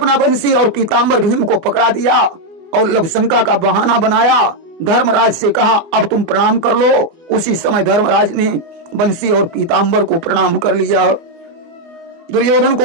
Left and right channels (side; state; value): left; late; 24 ms